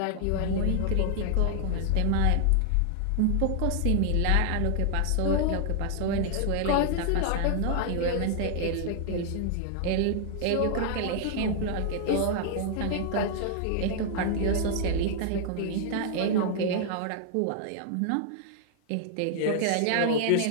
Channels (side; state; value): both; different; correlation 0.00